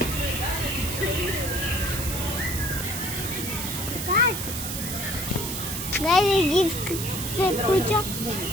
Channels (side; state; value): right; noise; hiss, 5 dB below the sound